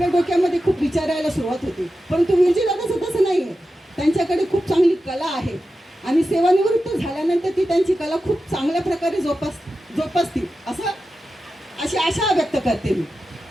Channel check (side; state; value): both; normal; correlation 0.92